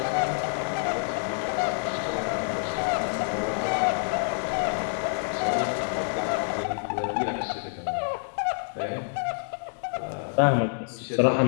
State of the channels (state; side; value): silent; right; digital silence